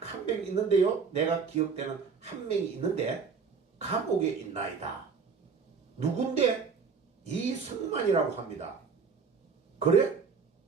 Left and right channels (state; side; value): quieter; left; 5.5 dB